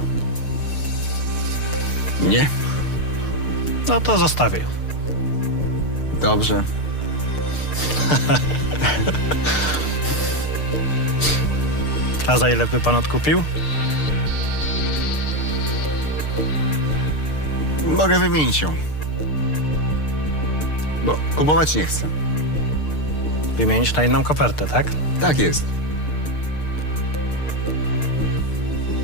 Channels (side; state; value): right; late; 6.6 ms